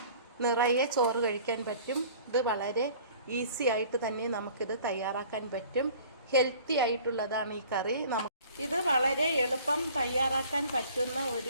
നിറയെ ചോറ് കഴിക്കാൻ പറ്റും. ഇത് വളരെ ഈസി ആയിട്ട് തന്നെ നമുക്കിത് തയ്യാറാക്കാൻ പറ്റും. ഹെൽത്തി ആയിട്ടുള്ളതാണ് ഈ കറി. ഇത് വളരെ എളുപ്പം തയ്യാറാക്കാൻ പറ്റുന്ന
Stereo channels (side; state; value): both; inverted; correlation -0.49